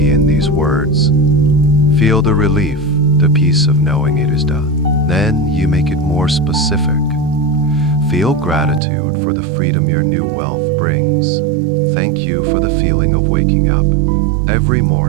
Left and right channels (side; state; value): left; drops out; at 8.8 s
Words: in these words. Feel the relief, the peace of knowing it is done. Then you make it more specific. Feel gratitude for the freedom your new wealth brings. Thank you for the feeling of waking up every